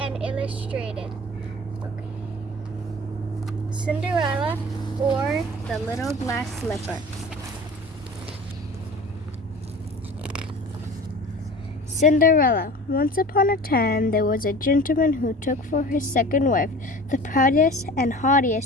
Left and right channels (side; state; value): both; normal; correlation 0.40